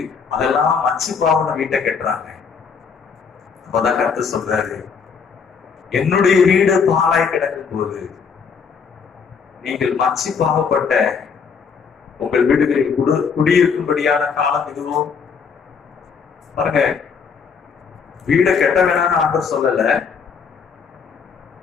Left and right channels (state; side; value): quieter; right; 6.0 dB